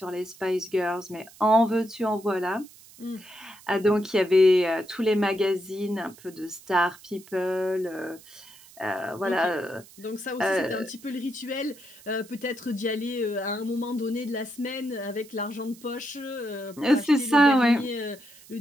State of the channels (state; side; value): noise; right; hiss, 22 dB below the sound